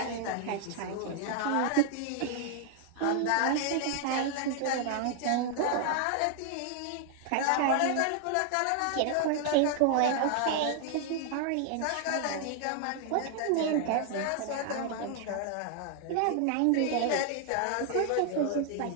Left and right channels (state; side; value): different; both; correlation 0.00